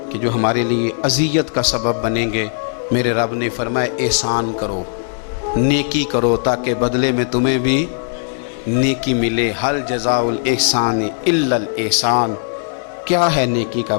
कि जो हमारे लिए अज़ियत का सबब बनेंगे। मेरे रब ने फरमाया एहसान करो, नेकी करो ताकि बदले में तुम्हें भी नेकी मिले। हल जज़ाउल एहसान इल्लल एहसान, क्या है नेकी का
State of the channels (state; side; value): silent; right; 63 dB below the other